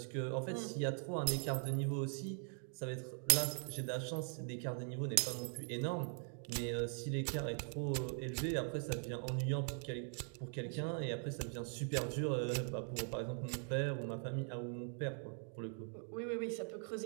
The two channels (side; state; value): left; silent; 50 dB below the other